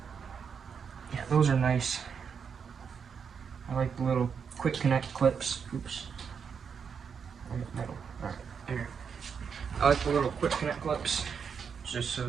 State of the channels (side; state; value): left; quieter; 6.6 dB